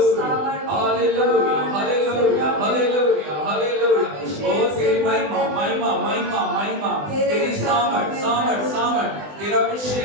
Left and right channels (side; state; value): left; late; 20 ms